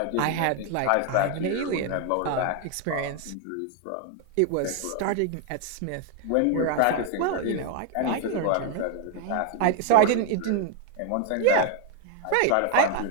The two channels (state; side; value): different; both; correlation 0.00